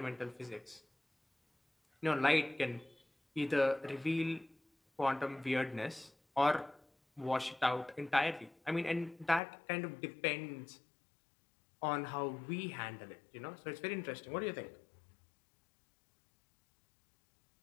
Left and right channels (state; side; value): drops out; right; at 9.4 s